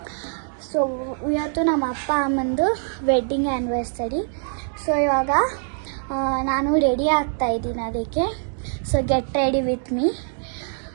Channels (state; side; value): silent; left; 59 dB below the other